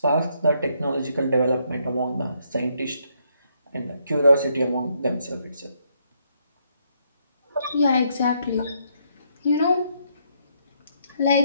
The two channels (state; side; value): inverted; both; correlation -0.73